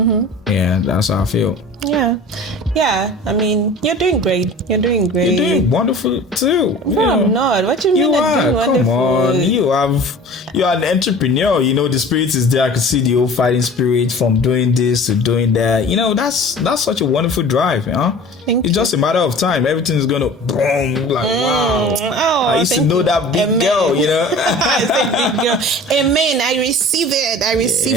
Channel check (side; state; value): both; normal; correlation 0.41